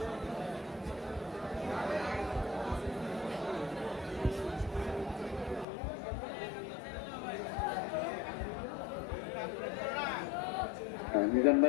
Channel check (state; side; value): drops out; right; at 5.7 s